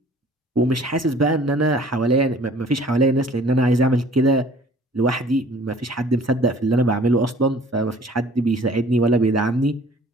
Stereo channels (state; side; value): normal; both; correlation 0.52